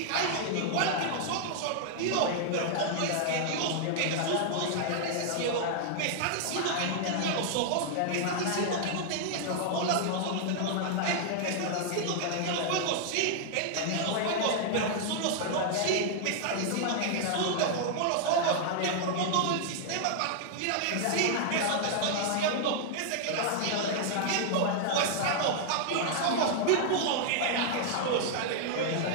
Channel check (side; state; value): both; different; correlation -0.01